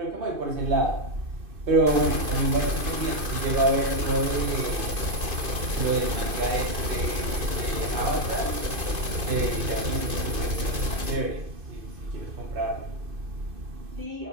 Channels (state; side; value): late; left; 2.5 ms